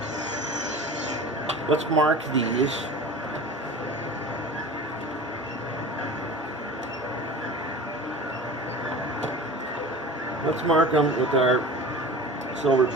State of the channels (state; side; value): normal; both; correlation 0.36